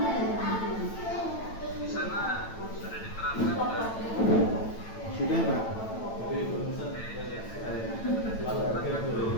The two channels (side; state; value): right; late; 9.0 ms